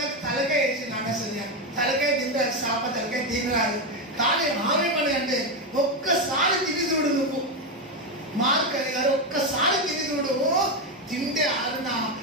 తలకాయ వేసింది. అసలు తలకాయ తింటారు, చేప తలకాయ తినరాదు. కానీ ఆమె పని అంటే ఒక్కసారి తిని చూడు నువ్వు. మార్క్ అని గారు ఒక్కసారి తిని చూడు, తింటే ఆరునా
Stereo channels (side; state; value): both; normal; correlation 0.10